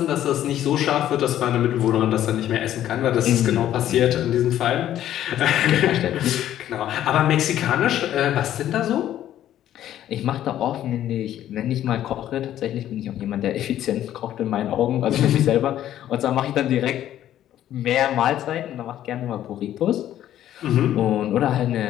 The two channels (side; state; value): right; quieter; 12.0 dB